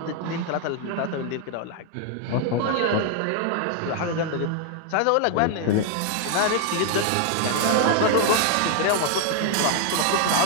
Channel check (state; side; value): different; both; correlation 0.00